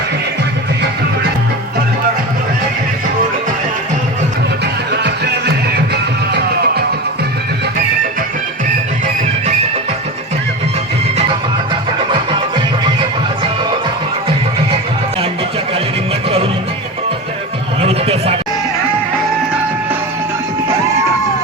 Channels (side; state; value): both; normal; correlation 0.26